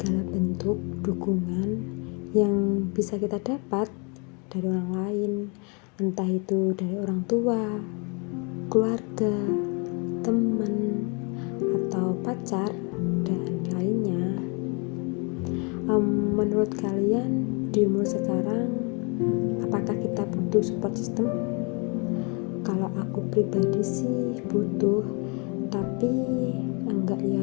bentuk dukungan yang bisa kita dapat dari orang lain, entah itu dari orang tua, keluarga, teman, atau pacar, dan lainnya. Menurut kalian di umur sekarang, apakah kita butuh support system? Kalau aku pribadi sih butuh, tapi enggak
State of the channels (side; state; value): right; quieter; 33.0 dB